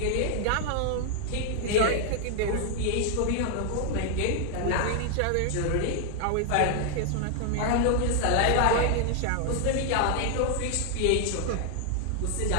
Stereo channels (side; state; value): both; different; correlation 0.00